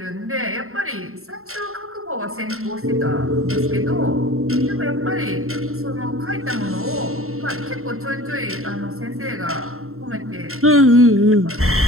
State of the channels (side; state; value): left; late; 0.62 ms